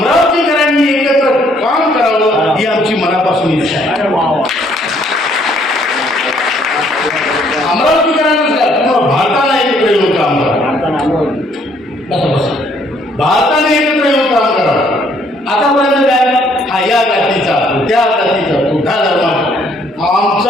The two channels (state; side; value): normal; both; correlation 0.65